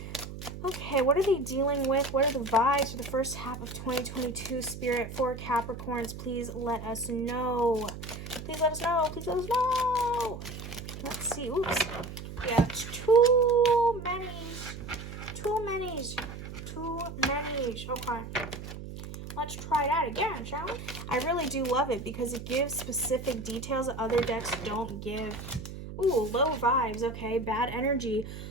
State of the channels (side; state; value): right; noise; hum, 10 dB below the sound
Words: Okay, what are they dealing with? What are the vibes for the first half of 2022, Spirit, for Capricorns? Please let us know. Please let us know. Please let us know. Let's see. Oops. Yeah, it's too many. Okay. Let's try that again, shall we? I really do love it because it gives specific details that other decks don't give. Ooh, low vibes, okay, bad energy.